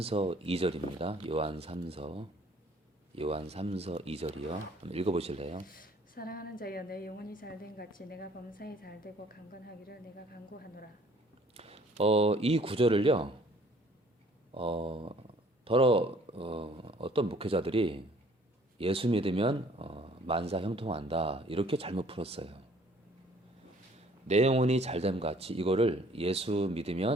2절입니다. 요한 3서 2절이요. 한번 읽어보실래요? 사랑하는 자여 내 영혼이 잘된 같이 내가 범사에 잘되고 강건하기를 내가 간구하노라. 이 구절을요. 어떤 목회자들이 예수 믿으면 만사 형통한다 이렇게 잘못 풀었어요. 내 영혼이 잘됨 같이 이거를 예수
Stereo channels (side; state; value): both; normal; correlation 0.57